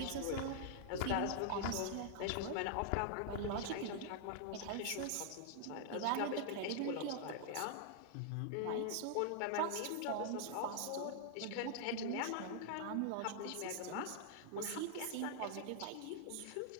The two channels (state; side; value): different; both; correlation -0.01